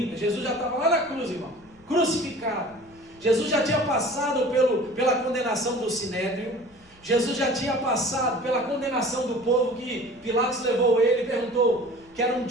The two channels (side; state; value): left; noise; rumble, 29 dB below the sound